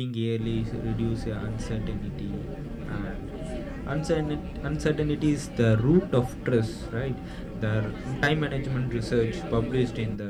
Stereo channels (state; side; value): identical; both; correlation 1.00